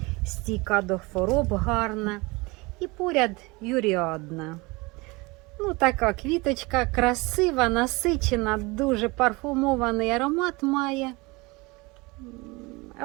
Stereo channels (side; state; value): left; quieter; 24.7 dB